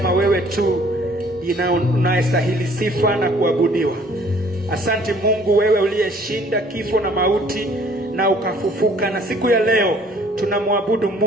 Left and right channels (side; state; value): both; normal; correlation 0.57